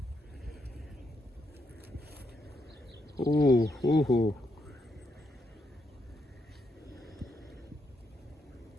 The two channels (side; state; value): both; normal; correlation 0.79